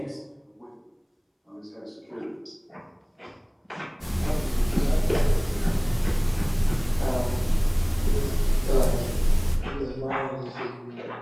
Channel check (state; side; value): identical; both; correlation 1.00